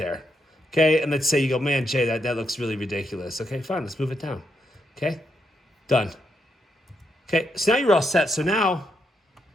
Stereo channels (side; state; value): both; normal; correlation 0.80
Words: Okay, and let's say you go, man, Jay, that looks really ridiculous. Okay, fine, let's move it down. Okay, done. Okay, so now you're all set. So now